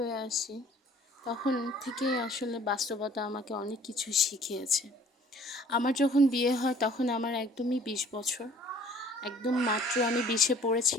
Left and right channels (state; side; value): normal; both; correlation 0.54